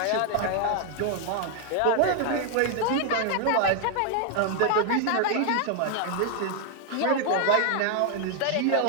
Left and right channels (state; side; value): different; both; correlation 0.00